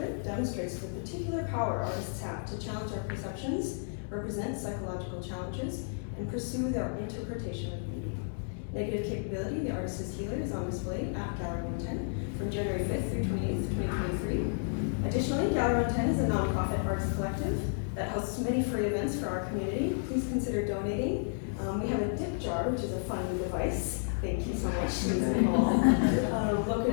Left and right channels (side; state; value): right; silent; digital silence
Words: demonstrates the particular power artists have to challenge our perceptions, represent psychological challenges, and pursue their interpretation of beauty. Negative capability, the artist as healer, is on display at Gallery 110 from January 5th through 28th, 2023. Additionally, Gallery 110 is a nonprofit arts collective that hosts many free events for our community. Please consider donating. We have a dip jar, which is a fun device. Thank you so much, Liz and Paul.